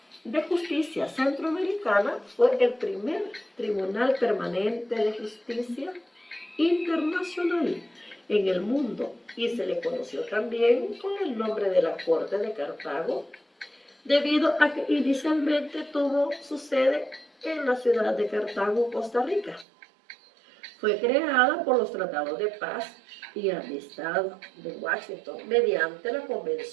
de Justicia Centroamericana fue el primer tribunal permanente de justicia internacional en el mundo y se le conoció también con el nombre de la Corte de Cartago, debido a que inicialmente tuvo su sede en la ciudad de Cartago, Costa Rica. Fue creada por los tratados de paz y amistad de Washington mediante la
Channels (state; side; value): drops out; left; at 19.7 s